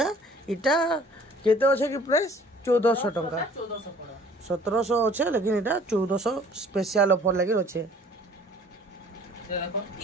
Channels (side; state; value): both; normal; correlation 0.53